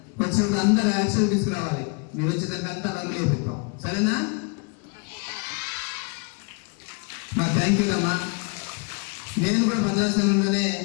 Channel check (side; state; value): right; quieter; 33.7 dB